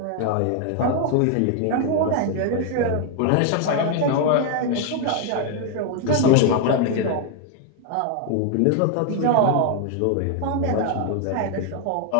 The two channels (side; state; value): both; different; correlation 0.00